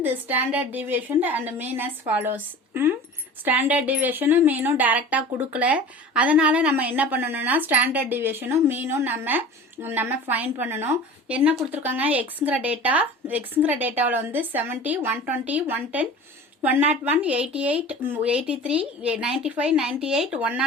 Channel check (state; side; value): normal; both; correlation 0.39